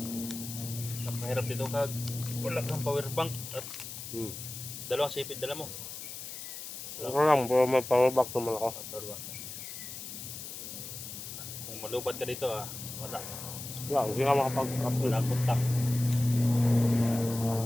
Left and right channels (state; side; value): noise; left; hiss, 9 dB below the sound